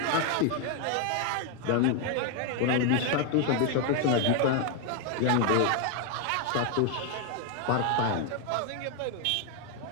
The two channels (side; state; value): both; different; correlation 0.01